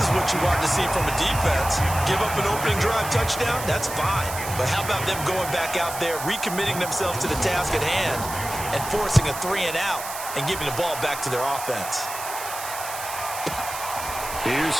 what you want to see from a defense. Give up an opening drive touchdown, that's fine. But how about them going back out there, recommitting themselves to the task at hand, and forcing a 3 and out and giving the ball back to their offense. Here's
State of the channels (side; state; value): right; noise; hiss, 9 dB below the sound